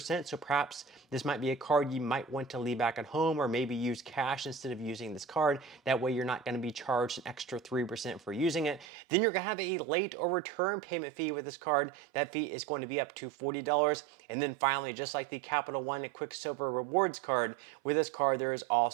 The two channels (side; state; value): left; drops out; at 8.8 s